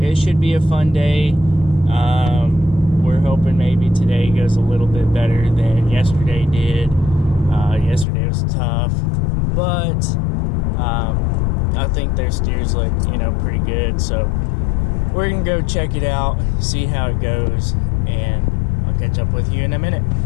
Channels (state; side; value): drops out; right; at 8.1 s